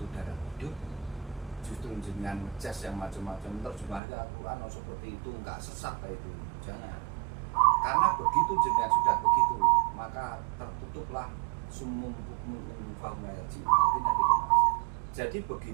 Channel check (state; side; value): drops out; left; at 4.0 s